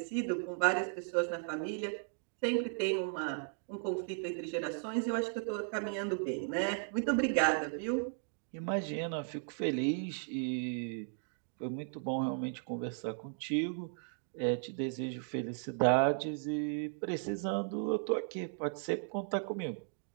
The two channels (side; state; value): left; silent; digital silence